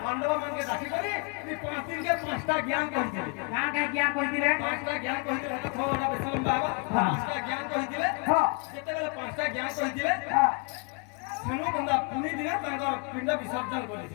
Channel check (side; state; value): right; quieter; 32.4 dB